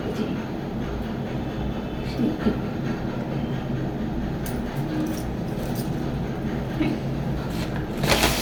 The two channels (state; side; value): identical; both; correlation 1.00